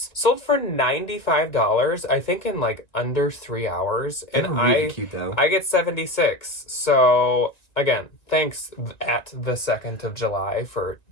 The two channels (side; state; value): right; late; 1.9 ms